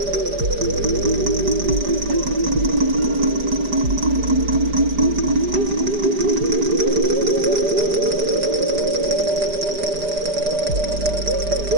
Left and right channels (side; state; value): left; late; 5.0 ms